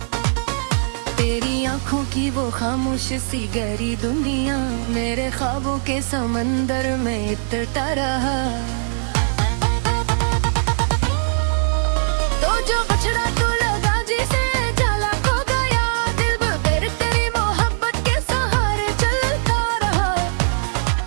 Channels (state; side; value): silent; left; 65 dB below the other